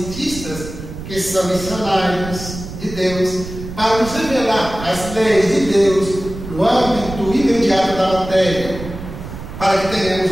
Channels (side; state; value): right; noise; rumble, 11 dB below the sound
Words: que são missionários de Deus, para nos revelar as leis de Deus no âmbito imediato da matéria, para que tenhamos